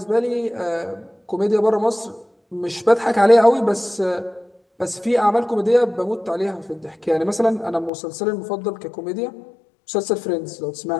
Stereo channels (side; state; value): right; drops out; at 7.9 s